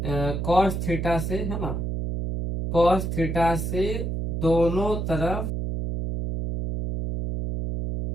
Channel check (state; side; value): noise; right; hum, 2 dB below the sound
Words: cos थीटा से, है ना, cos थीटा से दोनों तरफ